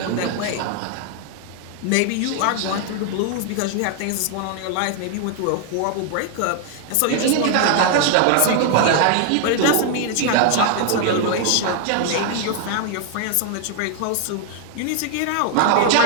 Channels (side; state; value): both; different; correlation 0.00